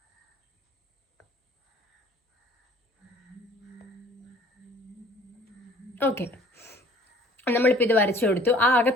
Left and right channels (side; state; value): both; normal; correlation 0.53